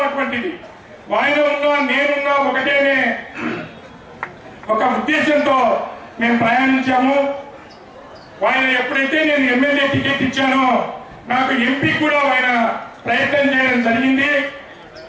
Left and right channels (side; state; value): both; identical; correlation 1.00